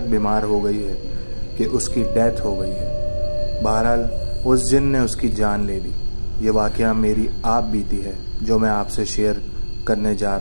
बीमार हो गई है कि उसकी डेथ हो गई है। बहरहाल उस जिन ने उसकी जान ले ली। ये वाक़या मेरी आप बीती है जो मैं आपसे शेयर करने जा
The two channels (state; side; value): inverted; both; correlation -1.00